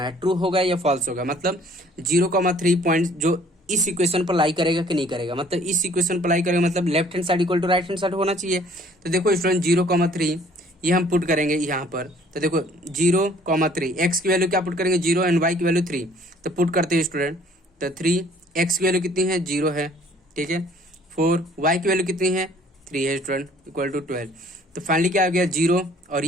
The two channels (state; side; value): normal; both; correlation 0.57